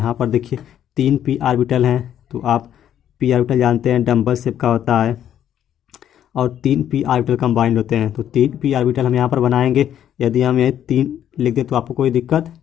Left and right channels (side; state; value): right; quieter; 10.3 dB